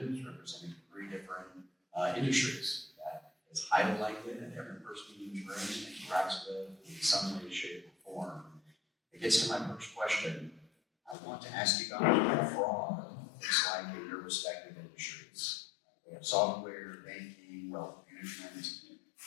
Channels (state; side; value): drops out; right; at 11.2 s